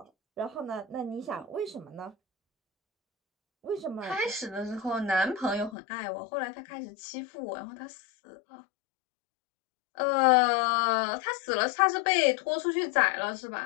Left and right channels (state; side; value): drops out; right; at 5.8 s